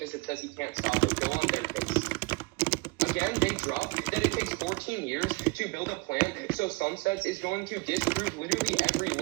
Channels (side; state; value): left; quieter; 26.4 dB